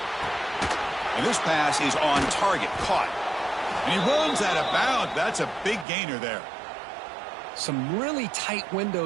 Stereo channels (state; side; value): drops out; left; at 5.9 s